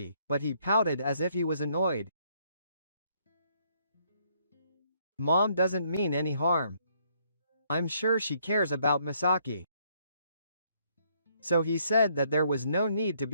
but he pouted as if he was annoyed. Mom doesn't mean any harm. I'm sure she cares about Misaki. So he said that there was no need to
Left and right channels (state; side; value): inverted; both; correlation -0.69